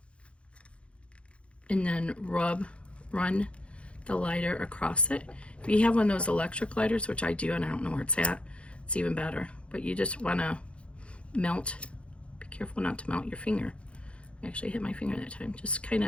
And then run the lighter across it. If you have one of those electric lighters, which I do, and I don't know where it's at, it's even better. But you just want to melt. Be careful not to melt your finger. I actually hit my finger that time. Just kind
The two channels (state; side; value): late; right; 0.060 ms